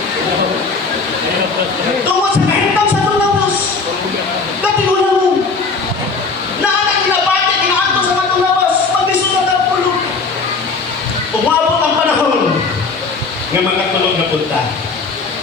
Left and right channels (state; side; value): quieter; right; 4.3 dB